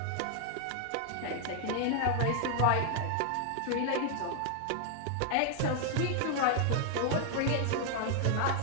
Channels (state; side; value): different; both; correlation 0.00